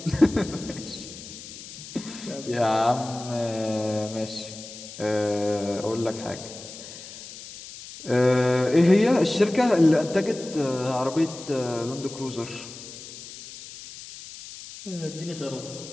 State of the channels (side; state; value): left; noise; hiss, 14 dB below the sound